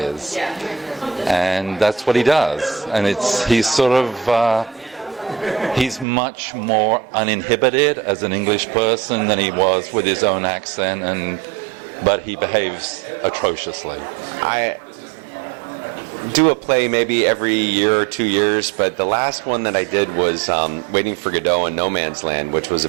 And that's what he does. And he's much more uninhibited as an English person than he was with his own accent, but he behaves atrociously. I do a play maybe every year or 2 years, but the last one that I did was Waiting for Godot in No Man's Land, which was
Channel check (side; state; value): left; drops out; at 6.1 s